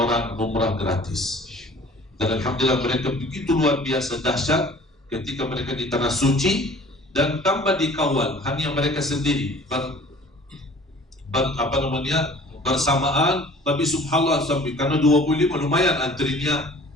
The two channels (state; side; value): normal; both; correlation 0.49